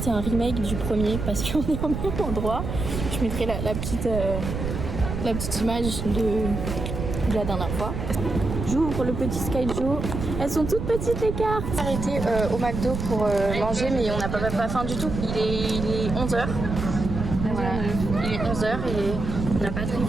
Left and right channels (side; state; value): right; noise; rumble, 4 dB below the sound